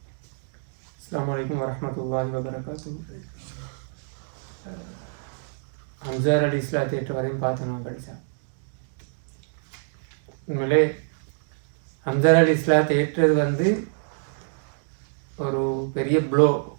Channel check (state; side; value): silent; left; digital silence